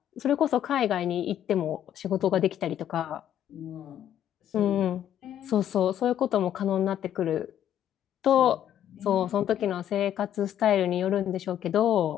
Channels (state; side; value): quieter; right; 10.7 dB